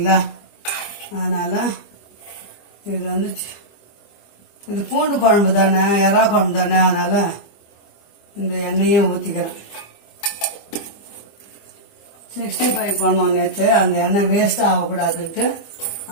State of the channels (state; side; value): late; right; 25 ms